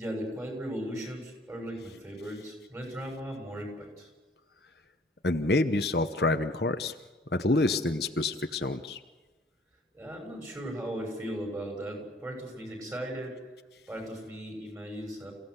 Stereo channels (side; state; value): both; normal; correlation 0.57